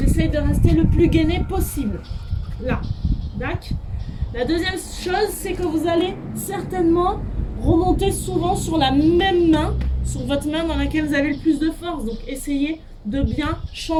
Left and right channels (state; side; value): identical; both; correlation 1.00